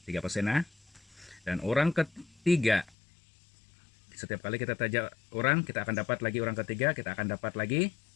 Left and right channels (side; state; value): right; drops out; at 3.0 s